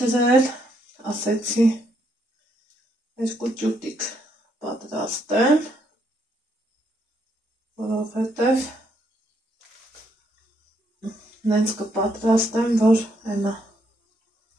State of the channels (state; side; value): normal; both; correlation 0.74